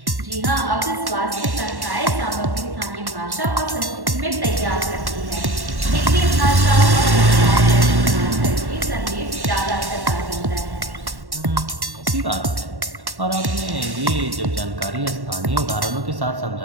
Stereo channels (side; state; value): left; late; 1.1 ms